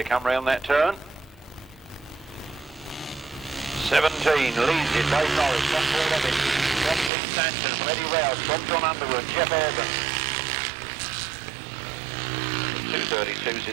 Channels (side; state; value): left; drops out; at 7.1 s